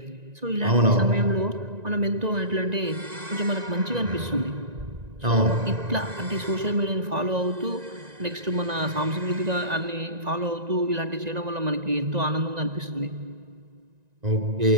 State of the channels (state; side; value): late; left; 1.9 ms